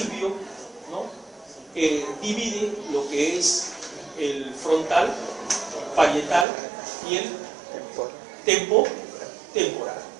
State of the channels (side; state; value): left; drops out; at 6.5 s